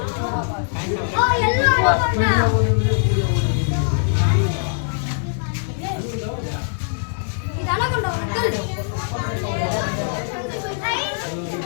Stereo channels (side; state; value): right; silent; digital silence